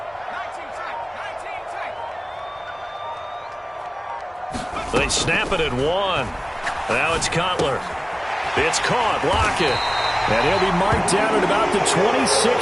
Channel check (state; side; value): identical; both; correlation 1.00